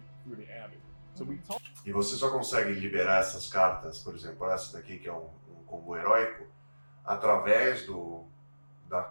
through the Abbey. So we talk. E você só consegue liberar essas cartas, por exemplo, essa daqui que é um combo heróico, através da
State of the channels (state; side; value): inverted; both; correlation -1.00